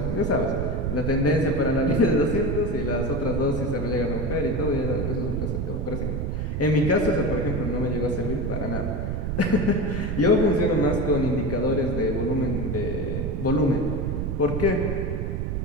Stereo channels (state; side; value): noise; right; rumble, 2 dB below the sound